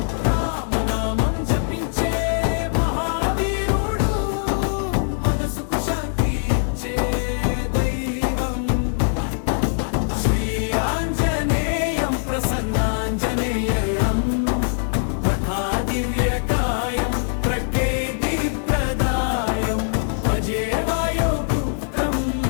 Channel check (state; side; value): silent; right; digital silence